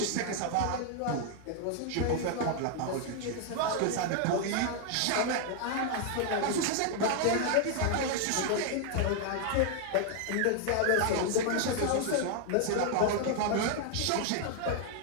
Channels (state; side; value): different; both; correlation 0.00